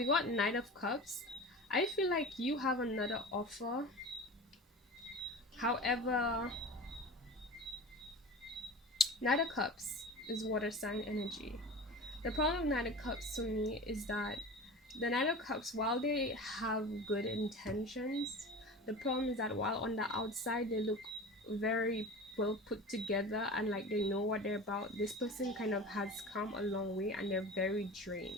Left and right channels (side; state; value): both; normal; correlation 0.33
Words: got Knight of Cups. I feel like you have another offer. However, Knight of Cups is water sign energy. The problem with Knight of Cups to me is that the Knight of Cups, while they have good intentions, the problem is that while on the outside they look very well put together and like they know what they're about, this person kind of has come a long way and they're very